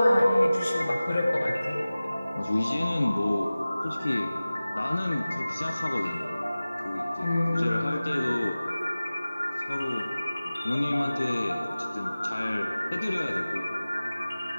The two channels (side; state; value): both; inverted; correlation -0.97